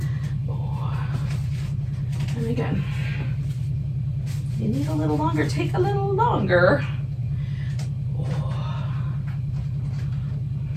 And again, you need a little longer, take a little longer.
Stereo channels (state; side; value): identical; both; correlation 1.00